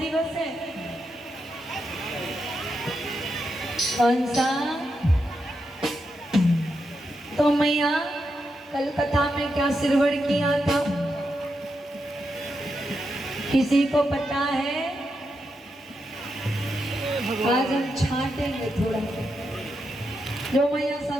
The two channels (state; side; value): normal; both; correlation 0.85